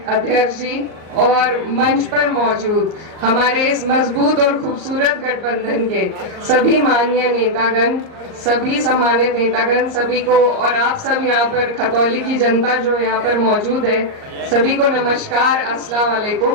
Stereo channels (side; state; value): left; late; 38 ms